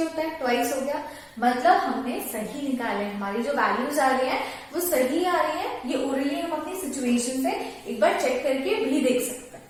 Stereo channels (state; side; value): identical; both; correlation 1.00